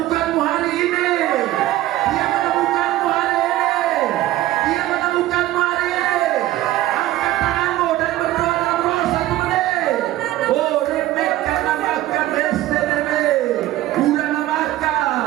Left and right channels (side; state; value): left; quieter; 15.2 dB